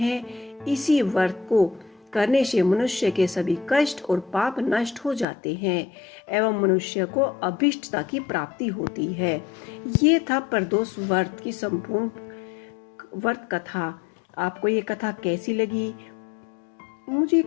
इसी व्रत को करने से मनुष्य के सभी कष्ट और पाप नष्ट हो जाते हैं एवं मनुष्य को अभीष्टता की प्राप्ति होती है। ये था प्रदोष व्रत की संपूर्ण व्रत कथा। आपको ये कथा कैसी लगी मुझे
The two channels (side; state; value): right; drops out; at 5.2 s